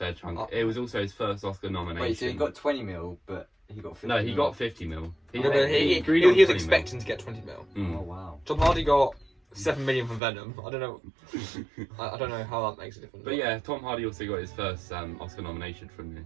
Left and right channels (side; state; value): left; drops out; at 10.2 s